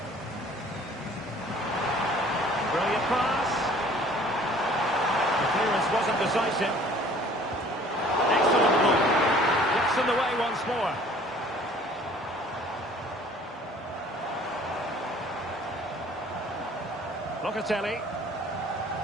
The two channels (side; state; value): both; normal; correlation 0.53